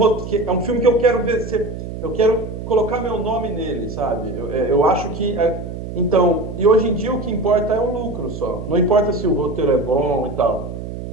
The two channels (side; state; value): right; noise; hum, 8 dB below the sound